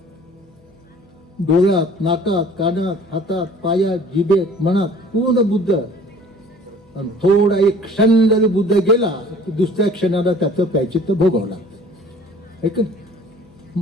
डोळ्यात, नाकात, कानात, हातात, पायात, जिभेत, मनात पूर्ण बुद्ध. आणि थोडा एक क्षण जरी बुद्ध गेला तर दुसऱ्या क्षणाला त्याचं प्रायश्चित्त भोगावं लागतं. ऐक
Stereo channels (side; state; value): both; normal; correlation 0.49